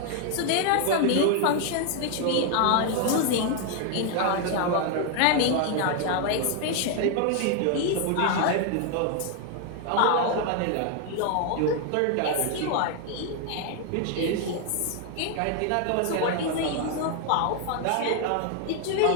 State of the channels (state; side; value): different; both; correlation 0.00